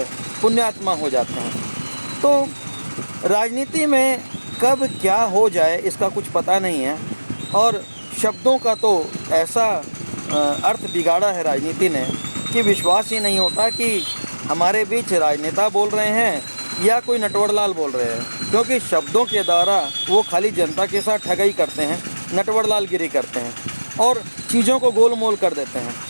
पुण्यात्मा हो जाते हैं। तो राजनीति में कब क्या हो जाए इसका कुछ पता नहीं है और शब्दों का तो ऐसा अर्थ बिगाड़ा है राजनीति ने कि विश्वास ही नहीं होता कि हमारे बीच राजनेता बोल रहे हैं या कोई नटवरलाल बोल रहे हैं, क्योंकि शब्दों के द्वारा वो खाली जनता के साथ ठगाई करते हैं, नटवरलालगिरी करते हैं और चीज़ों को गोलमोल कर देते हैं,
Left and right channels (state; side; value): inverted; both; correlation -1.00